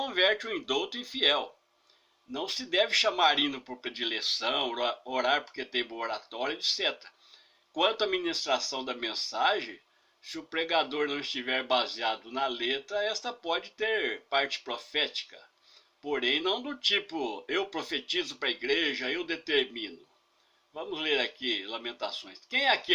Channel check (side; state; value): both; identical; correlation 1.00